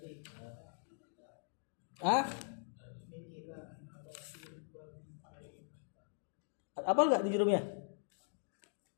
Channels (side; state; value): right; silent; digital silence